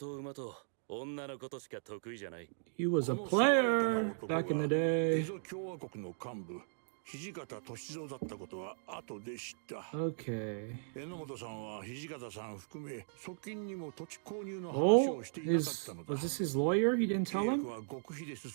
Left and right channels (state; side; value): silent; left; digital silence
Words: 馬と女のことしか得意じゃない。He was a player back in the day. 共和国の幹部、土方歳三だったことは後で知った。Okay. 榎本さんは土方さん含め側近にも土地購入の話をしていなかったのだ。Was this his lawyer? He didn't tell him? は極秘で